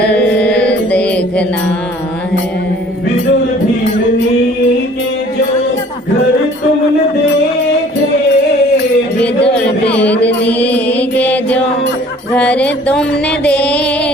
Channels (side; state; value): both; normal; correlation 0.53